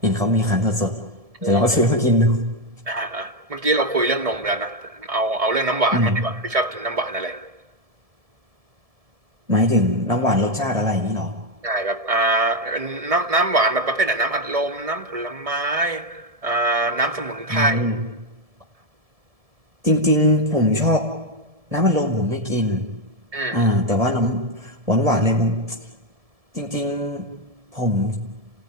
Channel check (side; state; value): left; late; 1.7 ms